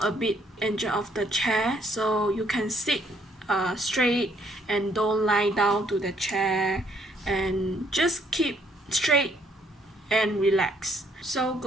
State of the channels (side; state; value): both; normal; correlation 0.67